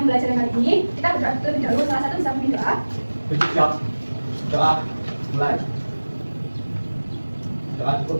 kali ini, kita berdoa terlebih dahulu. Salah satu bisa memimpin doa. Siap. Doa. Mulai. Doa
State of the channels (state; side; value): inverted; both; correlation -1.00